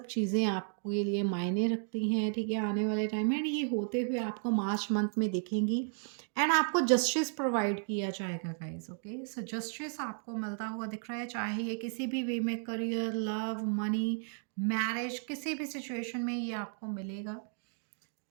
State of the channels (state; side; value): silent; left; 55 dB below the other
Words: चीज़ें आपके लिए मायने रखती हैं, ठीक है, आने वाले टाइम में। एंड ये होते हुए आपको मार्च मंथ में दिखेंगी। एंड आपको जस्टिस प्रोवाइड किया जाएगा गाइज, ओके। सो जस्टिस आपको मिलता हुआ दिख रहा है, चाहे ये किसी भी वे में, करियर, लव, मनी, मैरिज, किसी भी सिचुएशन में ये आपको मिलेगा।